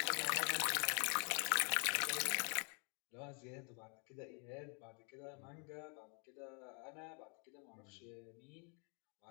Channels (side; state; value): right; quieter; 37.0 dB